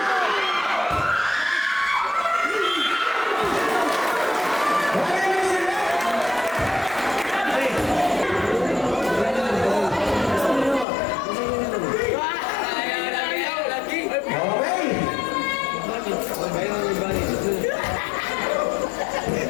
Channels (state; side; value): drops out; right; at 10.9 s